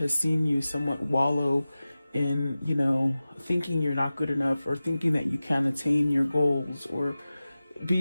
seen you somewhat wallow in, you know, thinking you're not good enough, or thinking that you can't attain your goals, or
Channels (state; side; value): inverted; both; correlation -0.96